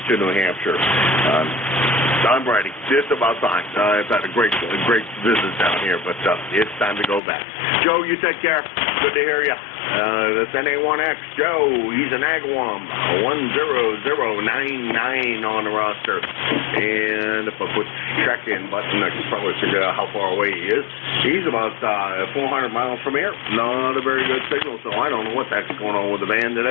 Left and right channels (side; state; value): right; drops out; at 7.2 s